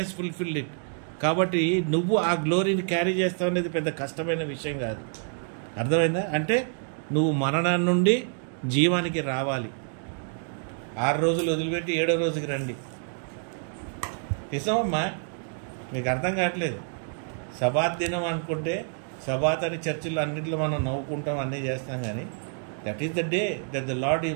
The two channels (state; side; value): silent; left; 60 dB below the other